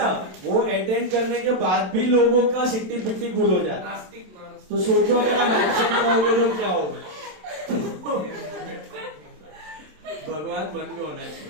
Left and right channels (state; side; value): late; left; 27 ms